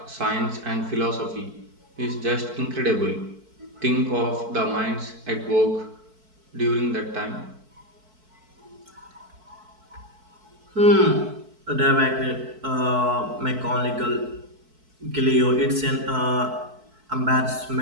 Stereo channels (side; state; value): left; late; 4.6 ms